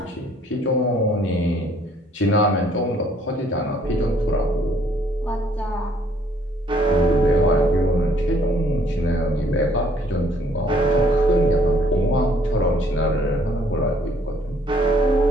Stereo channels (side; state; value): both; normal; correlation 0.63